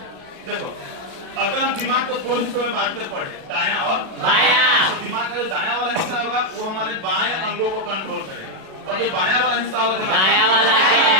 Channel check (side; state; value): left; late; 37 ms